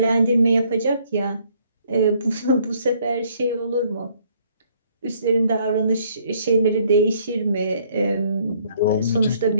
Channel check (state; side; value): inverted; both; correlation -0.64